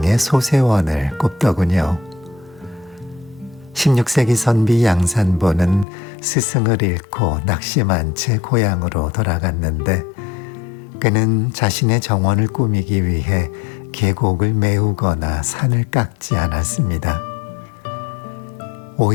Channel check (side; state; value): right; drops out; at 5.9 s